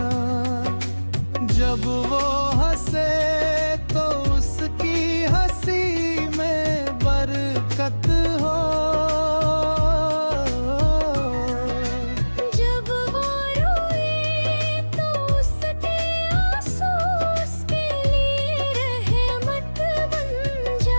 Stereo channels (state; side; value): inverted; both; correlation -1.00